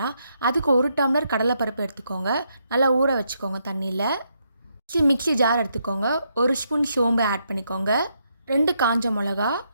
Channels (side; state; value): both; inverted; correlation -0.78